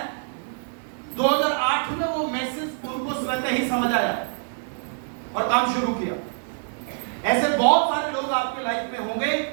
2008 में वो मैसेज उनको स्वतः ही समझ आया और काम शुरू किया। ऐसे बहुत सारे लोग आपके लाइफ में होंगे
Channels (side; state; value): left; silent; digital silence